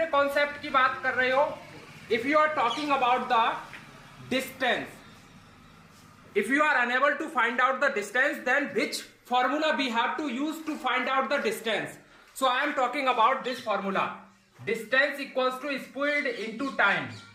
कॉन्सेप्ट की बात कर रहे हो, if you are talking about the distance, if you are unable to find out the distance then which formula we have to use to find out the distance? So I am talking about this formula, distance equals to speed into time,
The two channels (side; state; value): both; identical; correlation 1.00